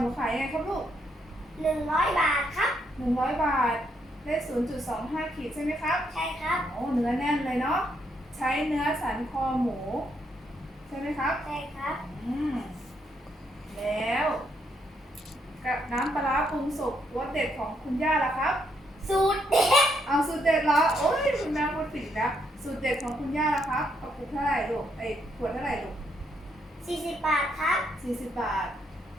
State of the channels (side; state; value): both; normal; correlation 0.75